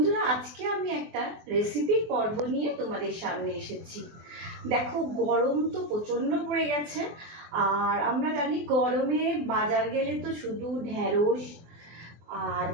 আজকে আমি একটা রেসিপির পর্ব নিয়ে তোমাদের সামনে এসেছি। দেখো, গরম তো প্রচণ্ড পড়ে গেছে, আর আমরা জানি গরমে বাজার গেলে তো শুধু ঢ্যাঁড়স আর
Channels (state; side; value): late; left; 24 ms